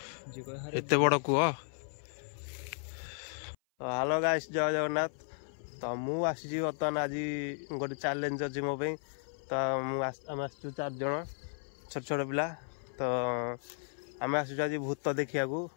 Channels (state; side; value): silent; right; 55 dB below the other